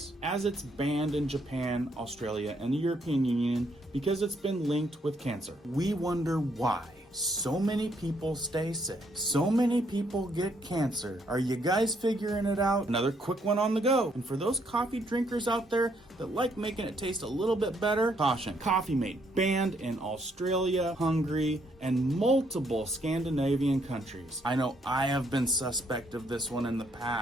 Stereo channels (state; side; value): normal; both; correlation 0.71